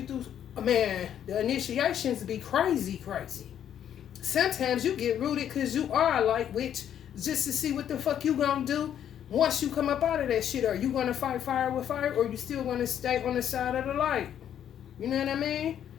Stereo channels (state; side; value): quieter; right; 9.8 dB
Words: through, man, the initiations be crazy. Sometimes you get rooted because you are a light witch just to see what the fuck you gonna do once you come up out of that shit. Are you gonna fight fire with fire or you still gonna stay on the side of the light? You know what I mean?